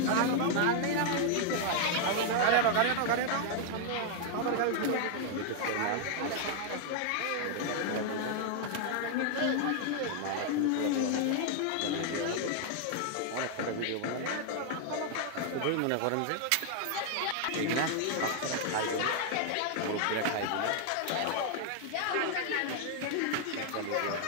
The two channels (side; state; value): both; different; correlation 0.00